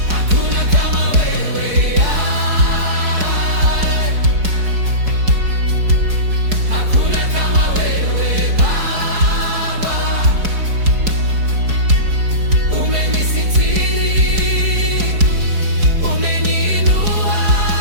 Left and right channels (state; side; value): late; left; 4.7 ms